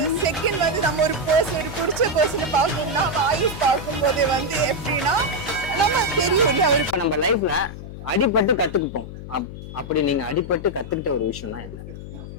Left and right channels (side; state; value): left; noise; hum, 11 dB below the sound